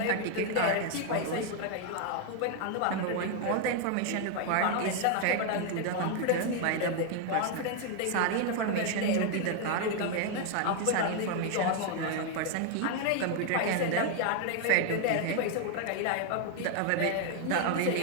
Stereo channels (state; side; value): different; both; correlation 0.00